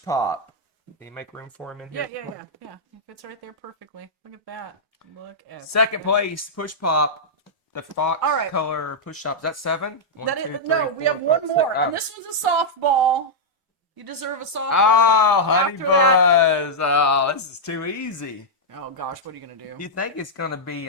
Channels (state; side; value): normal; both; correlation -0.07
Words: pop. Can you make room for him in here? Yeah. It fits right there perfectly. Look at that. Look at Second place, push pop. The fox All right. color push up. Is that 7? That is, no, we have one more, and this one's a softball. You deserve a softball. Oh, honey After that- buzz. Oh, this is too easy. Oh gosh, what are you gonna do? You think it's gonna be